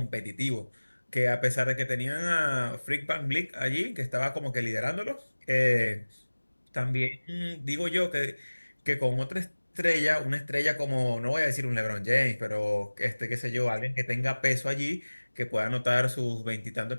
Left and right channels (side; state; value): both; inverted; correlation -1.00